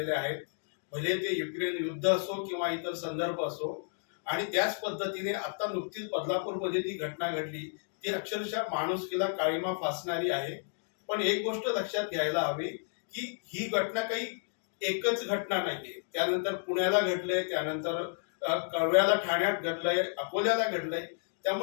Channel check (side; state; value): right; silent; digital silence